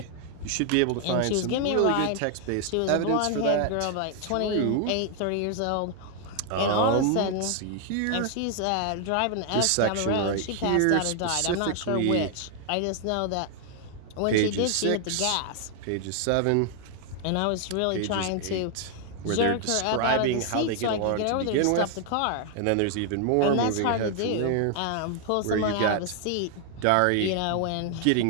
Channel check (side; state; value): both; different; correlation 0.00